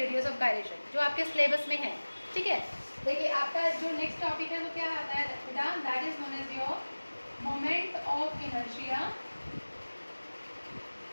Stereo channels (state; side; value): inverted; both; correlation -1.00